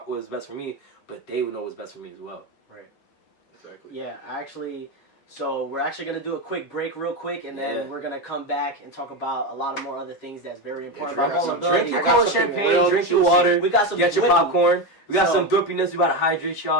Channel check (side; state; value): right; late; 7.3 ms